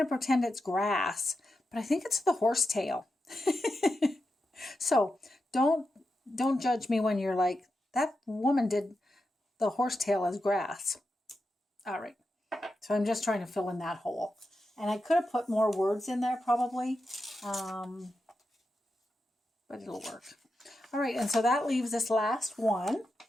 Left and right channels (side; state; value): both; normal; correlation 0.88